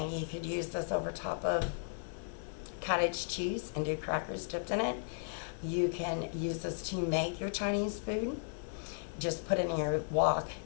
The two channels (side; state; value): right; silent; digital silence